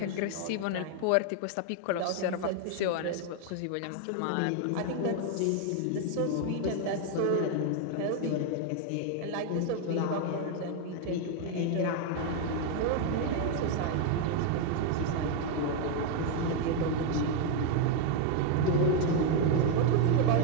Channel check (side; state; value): both; different; correlation 0.01